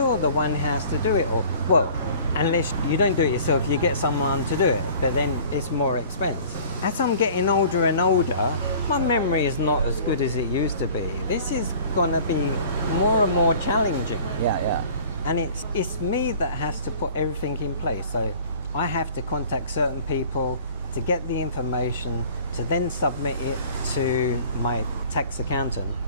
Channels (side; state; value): both; inverted; correlation -0.48